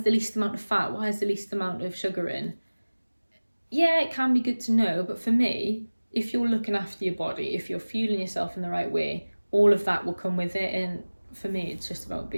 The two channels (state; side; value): inverted; both; correlation -1.00